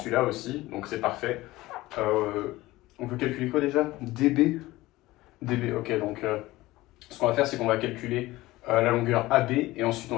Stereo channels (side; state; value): right; quieter; 18.5 dB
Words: aussi, donc c'est parfait. On veut calculer quoi déjà? DB? DB, ok, donc ce qu'on va faire, c'est qu'on va calculer la longueur AB et ensuite on